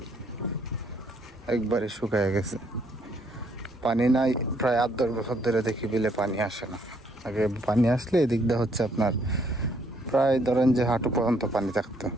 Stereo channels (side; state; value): both; normal; correlation 0.68